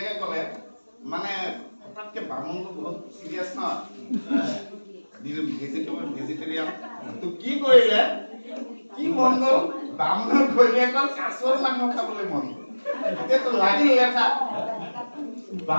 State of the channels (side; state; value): both; inverted; correlation -1.00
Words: ক'লে মানে হঠাৎকে বামুণটো বহুত চিৰিয়াছ ন ভেজিটেৰিয়ান তো কি কৰিলে কি মন গ'ল বামুণৰ ঘৈণীয়েকৰ কাছৰ মাংস খাবলৈ মন গ'ল এতিয়াতো লাগিল লেঠা